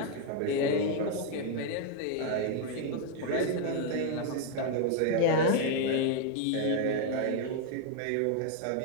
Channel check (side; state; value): both; different; correlation 0.01